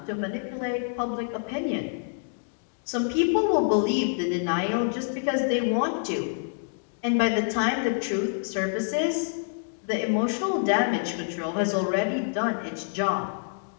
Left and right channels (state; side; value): silent; right; digital silence